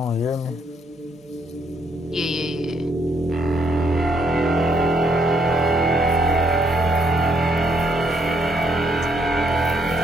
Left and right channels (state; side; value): normal; both; correlation 0.71